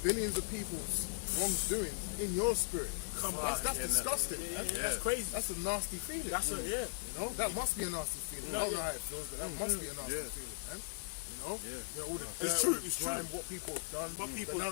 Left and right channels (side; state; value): right; silent; digital silence